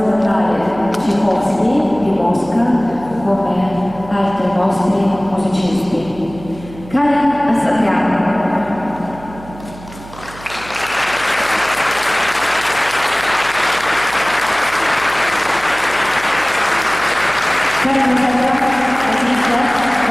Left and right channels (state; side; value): noise; right; hum, 17 dB below the sound